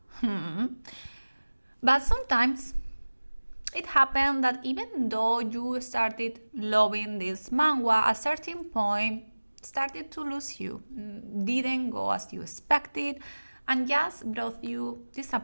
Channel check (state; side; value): inverted; both; correlation -1.00